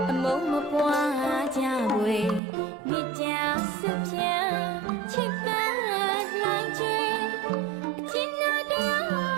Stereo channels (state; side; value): drops out; left; at 2.4 s